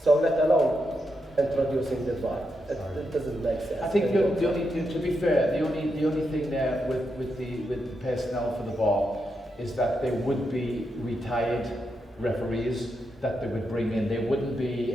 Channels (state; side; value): normal; both; correlation 0.84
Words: So let alone introducing the VAR. It doesn't make sense. I think the only, to be fair, the only thing there with the personnel for the VAR is that there would be retired referees that they would bring in. There wouldn't be